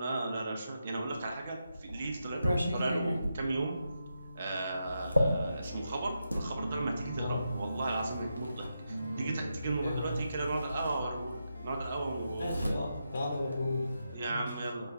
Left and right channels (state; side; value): inverted; both; correlation -0.85